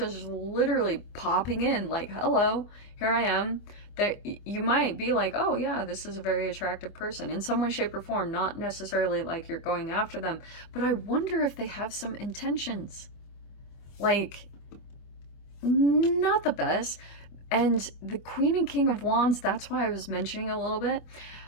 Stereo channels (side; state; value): right; late; 25 ms